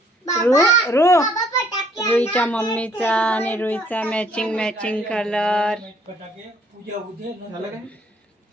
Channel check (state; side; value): normal; both; correlation 0.63